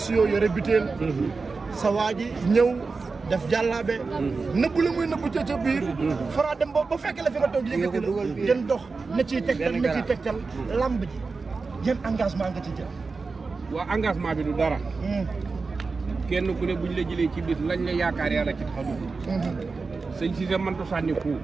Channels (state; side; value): quieter; left; 4.3 dB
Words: yore butéel. sa waa ji ñëw. def jàllaabe nëbbu la muy nëbbu ca biir Franc dem ba fekk la fi nga toog yëkkati la ngeen dox na ciy tegtal lamb ji yan engagement nga ci jël waa engagement bi du dara kenn ku ne buñ la jëlee ci bis lañ la yaakaar yàlla ci taxaw sëñ Cissé mënta sànni ku